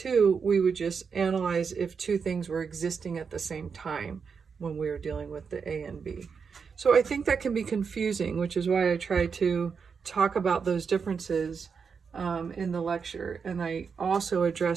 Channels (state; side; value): quieter; left; 5.9 dB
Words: we would just analyze if two things were existing at the same time. when we were dealing with the A and B. So I think that can be confusing, which is why I try to talk about those differences in the lecture. And I also